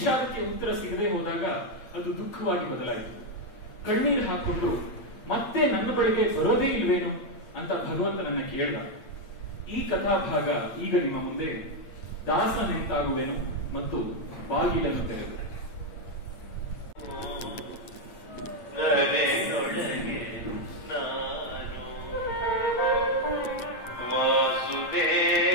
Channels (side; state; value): right; late; 8.8 ms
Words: ಉತ್ತರ ಸಿಗದೆ ಹೋದಾಗ ಅದು ದುಃಖವಾಗಿ ಬದಲಾಯಿತು. ಕಣ್ಣೀರು ಹಾಕೊಂಡು ಮತ್ತೆ ನನ್ನ ಬಳಿಗೆ ಬರೋದೇ ಇಲ್ವೇನು ಅಂತ ಭಗವಂತನನ್ನ ಕೇಳ್ದ. ಈ ಕಥಾಭಾಗ ಈಗ ನಿಮ್ಮ ಮುಂದೆ ದಾಸನೆಂತಾಗುವೆನು ಮತ್ತು ಬಾಗಿಲನ್ನು ತೆರೆದು.